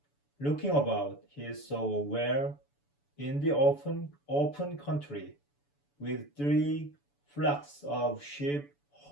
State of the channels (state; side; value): late; right; 7.0 ms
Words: Looking about, he saw a well in the open country, with 3 flocks of sheep